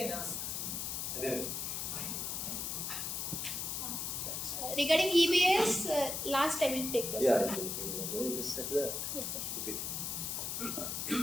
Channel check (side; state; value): left; noise; hiss, 2 dB below the sound